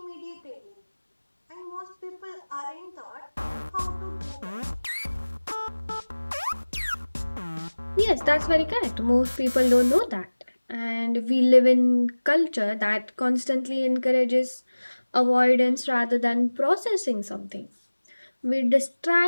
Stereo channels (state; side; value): inverted; both; correlation -1.00